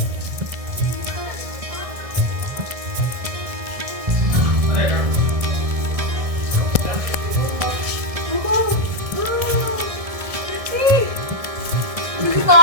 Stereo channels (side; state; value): left; late; 1.6 ms